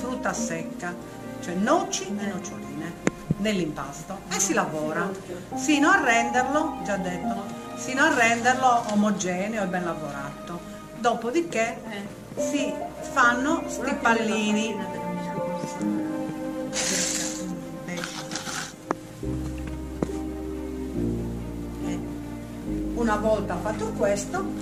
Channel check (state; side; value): identical; both; correlation 1.00